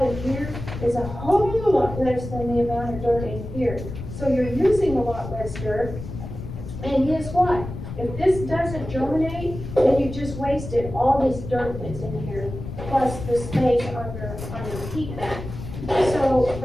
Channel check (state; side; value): noise; left; rumble, 9 dB below the sound